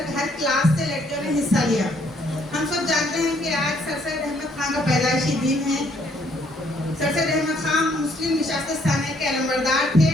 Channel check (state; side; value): normal; both; correlation 0.67